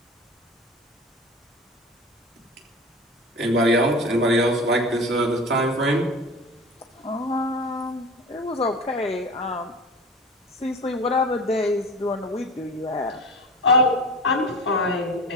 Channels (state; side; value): normal; both; correlation 0.33